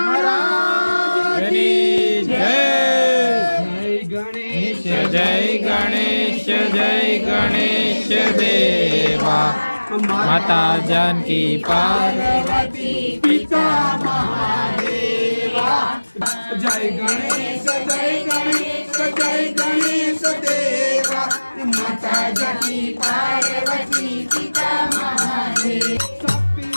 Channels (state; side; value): inverted; both; correlation -1.00